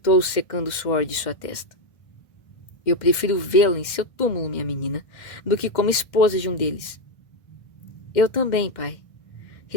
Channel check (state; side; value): late; right; 1.6 ms